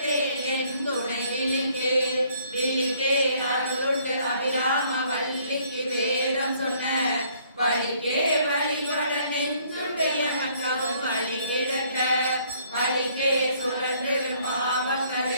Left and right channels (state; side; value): inverted; both; correlation -0.62